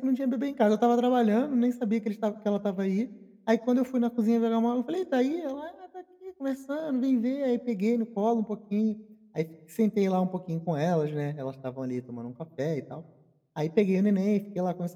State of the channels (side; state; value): both; identical; correlation 1.00